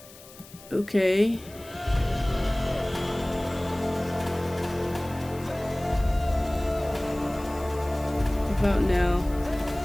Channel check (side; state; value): left; noise; hiss, 20 dB below the sound